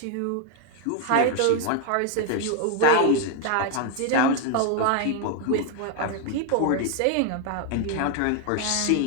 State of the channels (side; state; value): both; different; correlation 0.00